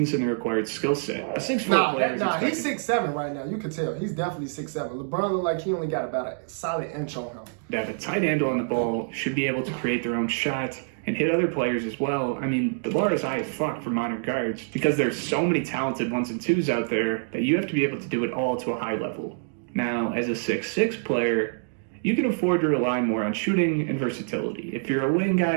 and the required skill set. A 6'4" player is expected... He's 6'7" right now. You can tell. He's definitely 6'7". LeBron look like he only got about a solid inch on him. to have a tight handle on the ball, should be able to create their own shot, and hit other players as well. I mean, the bar is high as fuck for modern guards because there's so many talented 1s and 2s out there that you have to be able to do it all to a high level. Now, as a 6'6" player, you can afford to rely more on shooting and versatility. If you're a wing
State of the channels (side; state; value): left; silent; digital silence